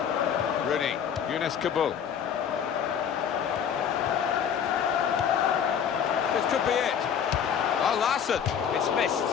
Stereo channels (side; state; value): right; quieter; 8.0 dB